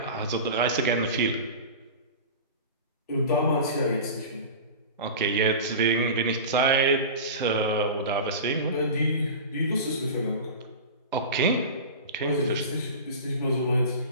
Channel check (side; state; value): both; inverted; correlation -0.31